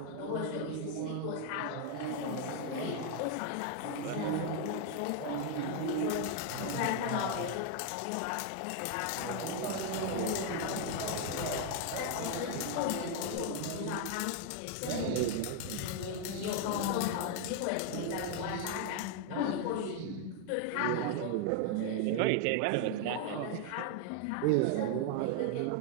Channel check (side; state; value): both; different; correlation 0.00